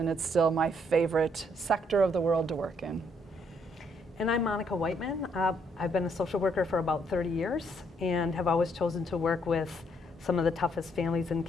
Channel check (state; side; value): normal; both; correlation 0.70